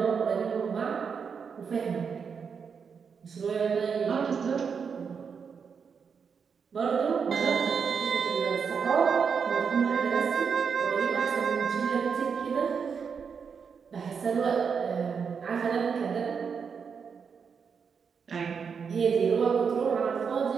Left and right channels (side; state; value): left; quieter; 6.2 dB